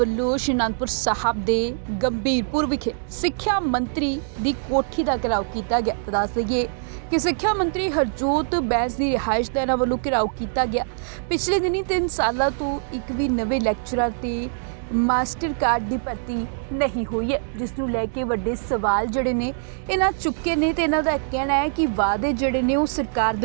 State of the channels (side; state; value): left; silent; digital silence